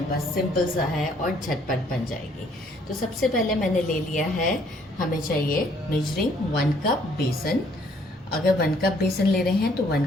बस सिंपल सा है और झटपट बन जाएगी। तो सबसे पहले मैंने ले लिया है, हमें चाहिए मेजरिंग 1 कप बेसन। अगर 1 कप बेसन ले रहे हैं तो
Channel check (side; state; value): both; normal; correlation 0.64